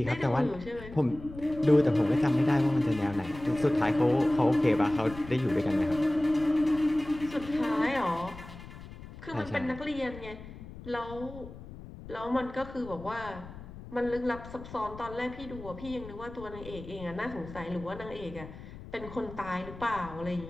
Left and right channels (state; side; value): noise; left; rumble, 15 dB below the sound